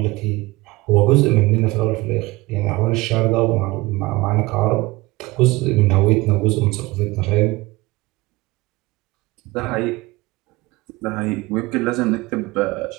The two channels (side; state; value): left; quieter; 21.1 dB